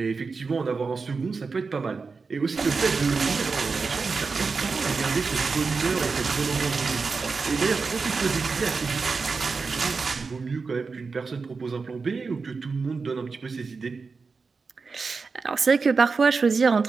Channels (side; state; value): left; quieter; 4.6 dB